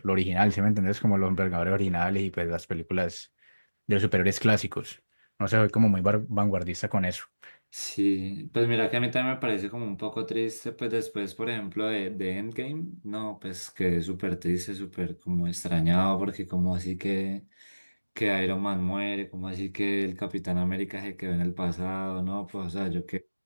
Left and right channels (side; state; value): both; inverted; correlation -1.00